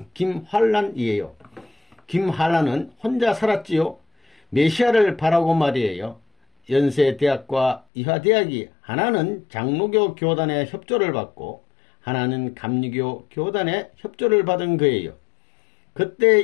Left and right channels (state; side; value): drops out; right; at 7.8 s